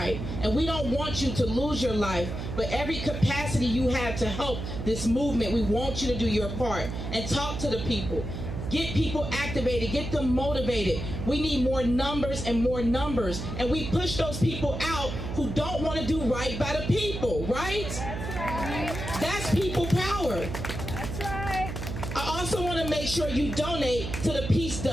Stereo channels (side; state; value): right; noise; hum, 6 dB below the sound